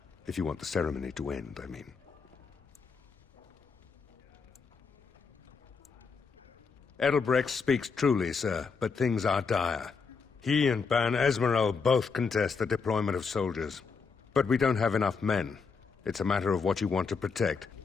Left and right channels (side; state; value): right; quieter; 5.2 dB